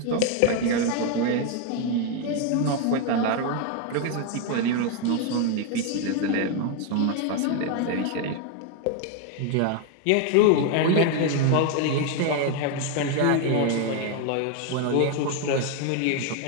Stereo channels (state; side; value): different; both; correlation 0.01